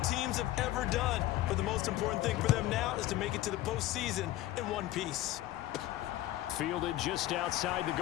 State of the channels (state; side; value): quieter; right; 15.4 dB